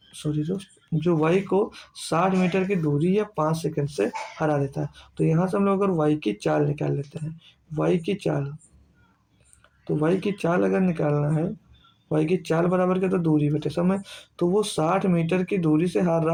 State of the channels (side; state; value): both; identical; correlation 1.00